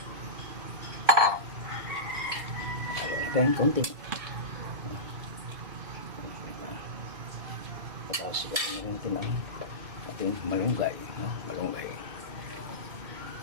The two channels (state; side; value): late; left; 2.5 ms